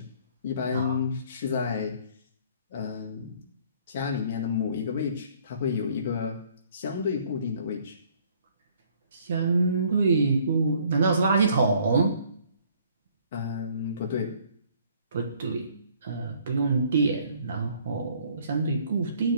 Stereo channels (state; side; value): inverted; both; correlation -0.60